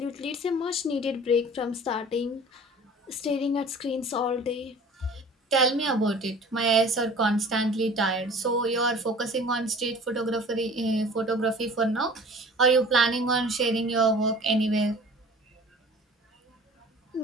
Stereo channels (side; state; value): both; normal; correlation 0.45